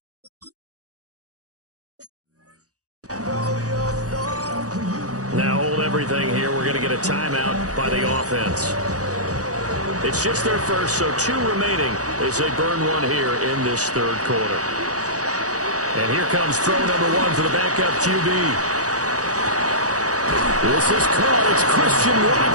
Now hold everything here. We're going to get a timeout by the offense. It's just their first, so 2 remaining as they burn one here in this third quarter. And here comes throw number 1 for the backup QB. This is caught. It's Christian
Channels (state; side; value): late; left; 0.67 ms